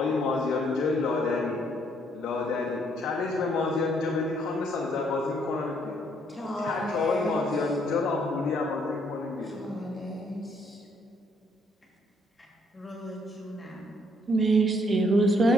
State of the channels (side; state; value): both; normal; correlation 0.69